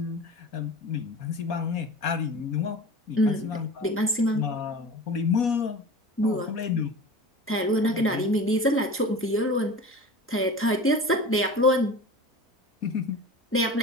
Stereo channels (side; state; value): both; normal; correlation 0.35